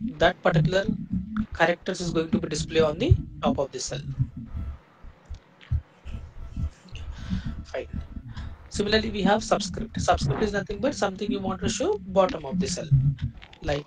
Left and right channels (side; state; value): both; identical; correlation 1.00